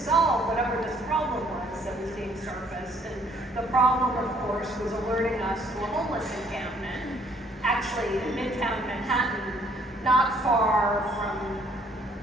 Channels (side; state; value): both; normal; correlation 0.63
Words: whatever this problem was that was being surfaced. And the problem, of course, was alerting us to a homeless encampment, actually in Midtown Manhattan, not far from